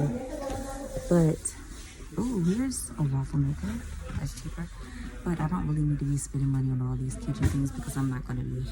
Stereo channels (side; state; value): both; identical; correlation 1.00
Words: But, oh, here's a waffle maker. That's cheaper. But I don't really need to be spending money on all these kitchen things because I'm not going to be